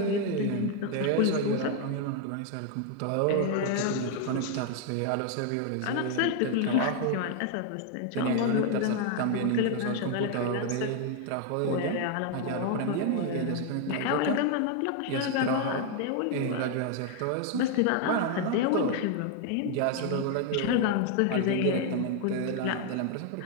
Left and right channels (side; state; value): both; different; correlation 0.00